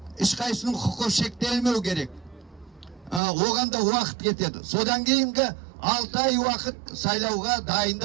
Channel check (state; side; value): drops out; left; at 3.2 s